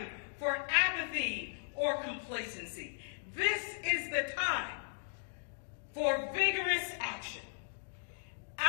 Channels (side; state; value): right; silent; digital silence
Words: for apathy or complacency. This is the time for vigorous action.